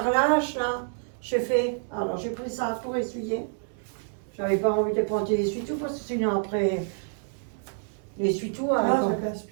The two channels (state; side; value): silent; left; 60 dB below the other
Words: là, j'ai fait. Alors j'ai pris ça pour essuyer. J'avais pas envie de prendre des essuie-tout parce que sinon après, l'essuie-tout. Ah, ça